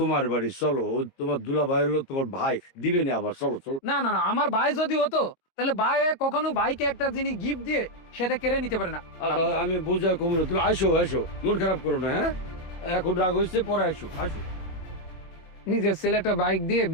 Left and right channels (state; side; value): late; right; 23 ms